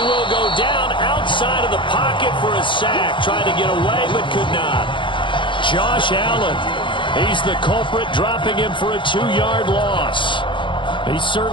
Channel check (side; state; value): right; late; 0.24 ms